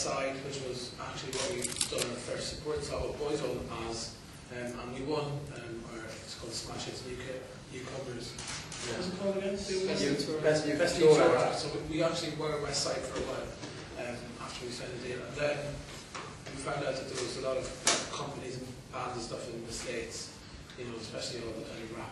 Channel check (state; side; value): identical; both; correlation 1.00